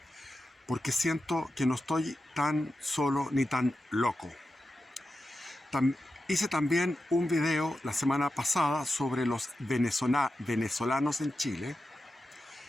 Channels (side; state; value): both; normal; correlation 0.91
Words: porque siento que no estoy tan solo ni tan loco. Hice también un video la semana pasada sobre los venezolanos en Chile,